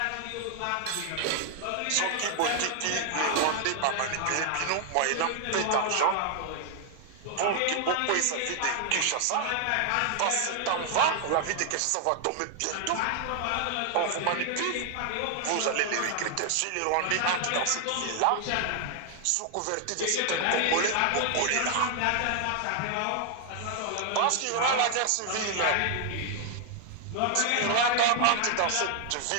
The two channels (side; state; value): both; different; correlation 0.00